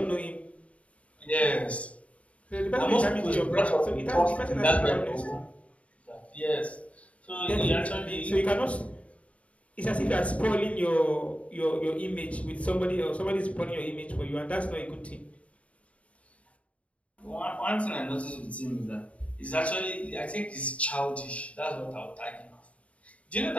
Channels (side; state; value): right; late; 0.065 ms